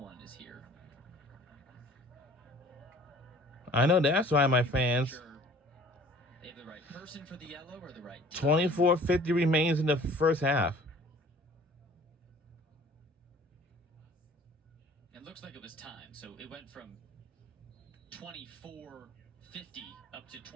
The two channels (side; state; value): both; normal; correlation 0.50